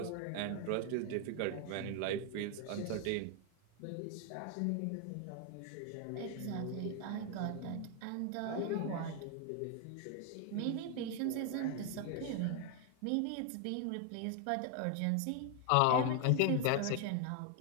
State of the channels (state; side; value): different; both; correlation 0.01